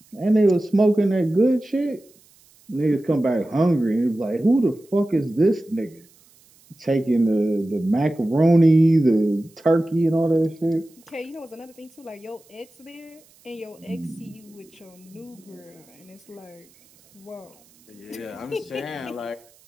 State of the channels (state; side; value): noise; right; hiss, 30 dB below the sound